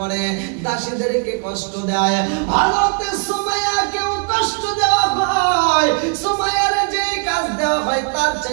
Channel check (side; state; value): left; quieter; 39.1 dB